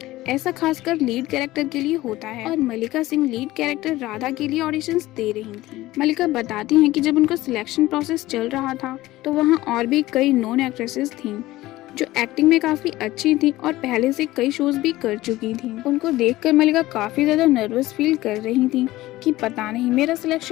ऐसा खासकर लीड कैरेक्टर के लिए होता है और मल्लिका सिंह लीड कैरेक्टर राधा के लिए ऑडिशंस दे रही थी। मल्लिका बताती हैं कि जब उनका सिलेक्शन प्रोसेस चल रहा था तो वहाँ और भी कई नॉन एक्ट्रेसेस थीं जो एक्टिंग में काफी अच्छी थी और पहले से कई शोज भी कर चुकी थी। उनको देखकर मल्लिका काफी ज्यादा नर्वस फील कर रही थी कि पता नहीं मेरा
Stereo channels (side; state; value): right; quieter; 17.2 dB